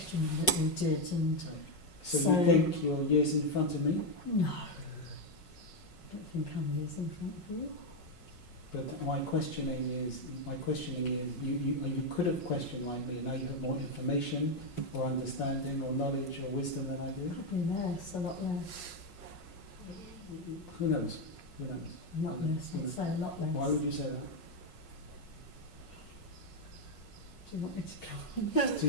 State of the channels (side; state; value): right; late; 5.5 ms